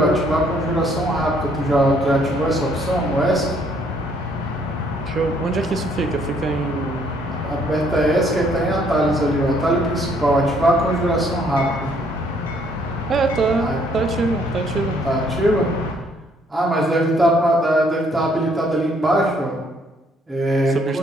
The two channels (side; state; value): both; normal; correlation 0.66